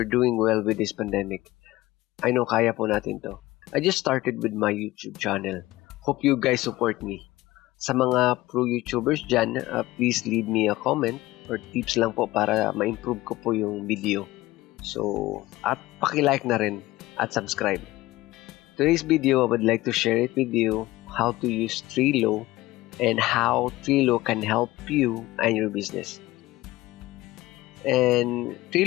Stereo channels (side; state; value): right; quieter; 18.0 dB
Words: doing well with this pandemic. I know kaya po natin to. I just started with my YouTube channel. Hope you guys support me. Sa mga pro YouTubers dyan, please leave me a comment or tips lang po para ma-improve ko po yung video. So, at paki-like na rin at subscribe. Today's video, I would like to share it with you how to use Trello and how Trello can help you and your business. And